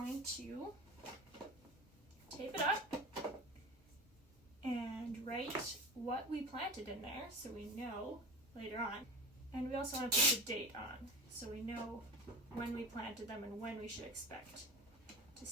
to tape it up and write what we planted in there so we know later on. And we also want to put the date on so we know when we planted them and when we should expect to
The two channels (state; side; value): normal; both; correlation 0.30